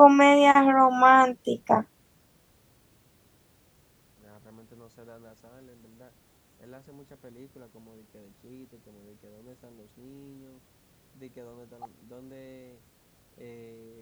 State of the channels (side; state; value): both; identical; correlation 1.00